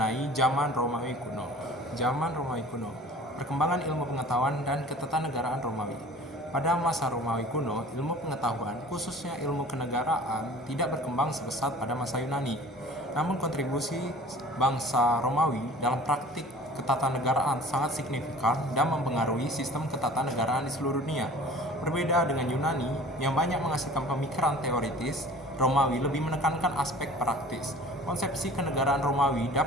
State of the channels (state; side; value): normal; both; correlation 0.45